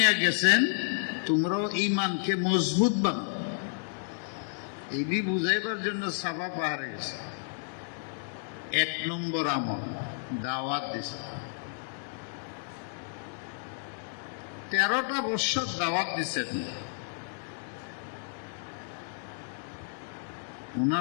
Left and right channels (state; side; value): silent; right; digital silence